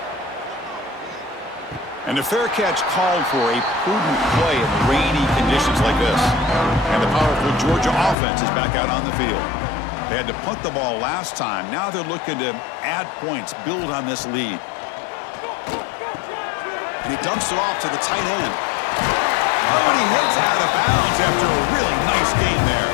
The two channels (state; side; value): drops out; right; at 8.2 s